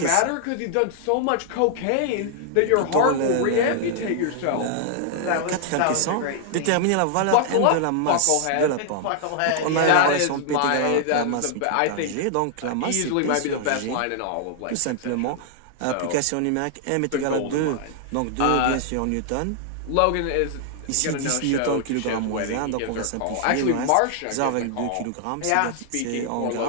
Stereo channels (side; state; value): both; different; correlation -0.01